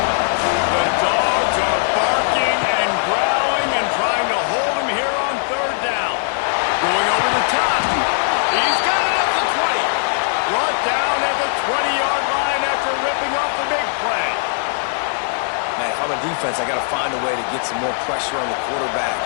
The Dogs are barking and growling and trying to hold him here on third down. Going over the top. He's got it at the 20. Brought down at the 20-yard line after ripping off the big play. Man, if I'm a defense, I got to find a way to get some more pressure on the quarterback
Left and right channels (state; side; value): silent; right; digital silence